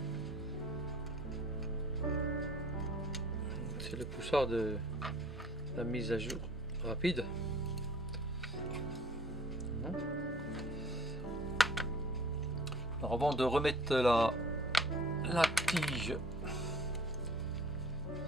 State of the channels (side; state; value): both; normal; correlation 0.51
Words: C'est le poussard de la mise à jour rapide. Alors avant de remettre la tige,